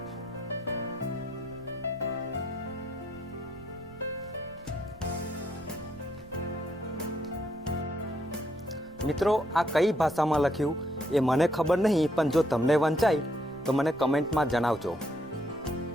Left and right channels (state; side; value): noise; right; rumble, 22 dB below the sound